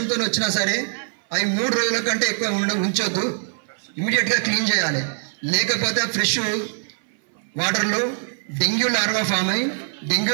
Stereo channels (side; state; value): left; silent; 58 dB below the other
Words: వచ్చినా సరే అవి 3 రోజుల కంటే ఎక్కువ ఉంచొద్దు, ఇమీడియట్గా క్లీన్ చేయాలి. లేకపోతే ఫ్రెష్ వాటర్లో డెంగ్యూ లార్వా ఫామ్ అయ్యి డెంగ్యూ